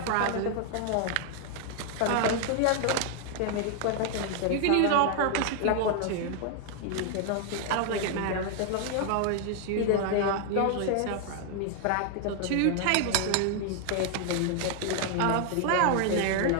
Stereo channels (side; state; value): both; different; correlation 0.00